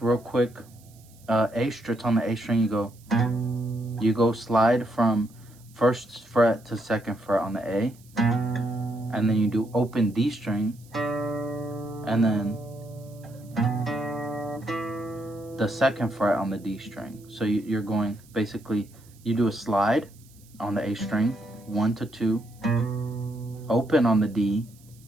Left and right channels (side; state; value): right; noise; hiss, 27 dB below the sound